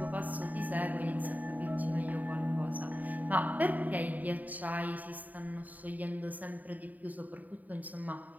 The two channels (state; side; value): late; left; 0.078 ms